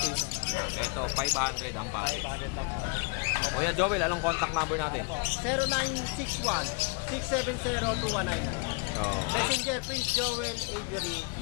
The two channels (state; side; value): quieter; right; 33.6 dB